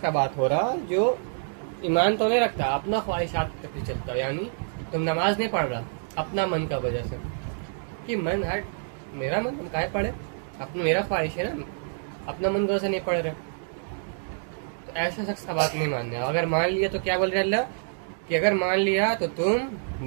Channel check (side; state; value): left; silent; digital silence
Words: بات ہو رہا جو ایمان تو نہیں رکھتا، اپنا خواہشات کے پیچھے چلتا، یعنی تم نماز نہیں پڑھ رہا اپنا من کا وجہ سے، کہ من ہٹ میرا من، ہم کاہے پڑھے، اپنا میرا خواہش ہے نا، اپنا من وجہ سے نہیں پڑھ رہے، تو ایسا شخص کا بات نہیں ماننا ہے۔ اگر مان لیا تو کیا بول رہے اللہ کہ اگر مان لیا تو تم